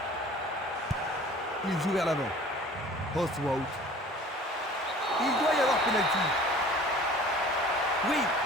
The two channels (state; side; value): normal; both; correlation 0.47